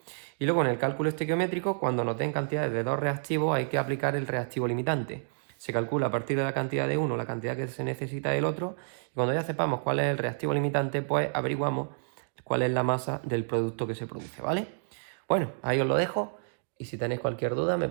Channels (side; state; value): left; silent; digital silence